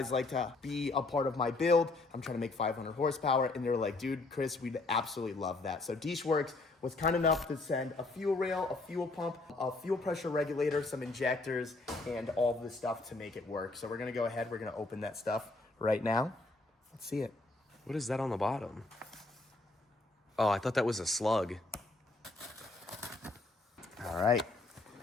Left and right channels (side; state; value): right; quieter; 3.2 dB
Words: like to be a part of my build? I'm trying to make 500 horsepower. And they were like, dude, Chris, we'd absolutely love that. So Dishworks was kind enough to send a fuel rail, a fuel pump, a fuel pressure regulator, some injectors, and all of this stuff to make it work. So we're going to go ahead. We're going to open that stuff right now. Let's see it. What is that on the bottom? Oh, I thought that was a slug. All right.